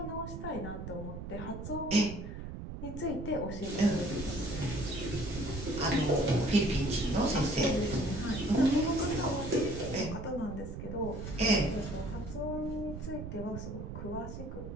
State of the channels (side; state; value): right; noise; rumble, 8 dB below the sound